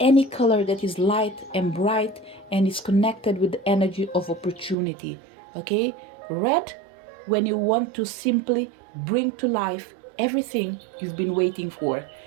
color that is light and bright and is connected with the energy of opportunity, okay? Red, when you want to simply bring to life everything you've been waiting for.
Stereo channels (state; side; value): drops out; left; at 4.8 s